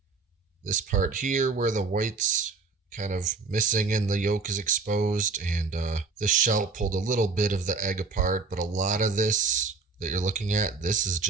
this part here where the white's kind of missing and the yolk is exposed, and the shell pulled a little bit of the egg apart, but a lot of this that you're looking at, this is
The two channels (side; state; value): left; quieter; 4.4 dB